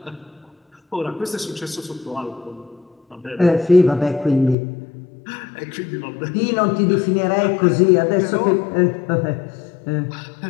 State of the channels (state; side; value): drops out; right; at 4.5 s